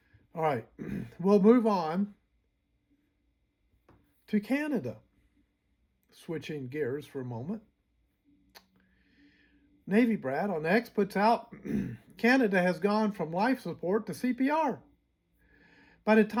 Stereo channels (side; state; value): both; identical; correlation 1.00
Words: All right, we'll move on to Canada. Switching gears for a moment. Navy Brad on X puts out Canada has gone from life support to CPR. By the